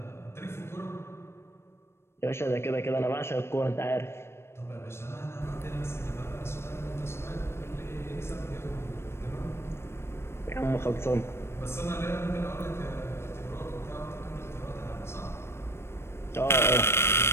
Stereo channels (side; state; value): right; late; 0.12 ms